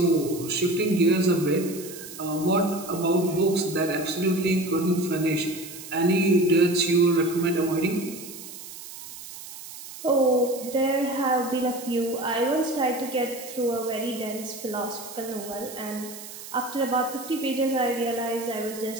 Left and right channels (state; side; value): noise; right; hiss, 13 dB below the sound